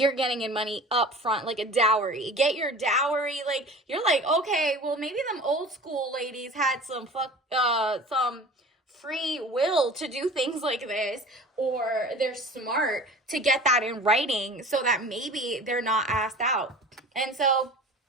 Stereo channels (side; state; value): both; normal; correlation 0.40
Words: getting in money up front, like a dowry. Get your dowry. Like, you're like, okay, well, maybe them old school ladies had some free will to do things like this, or they're smart to get that in writing so that maybe they're not asked out. And so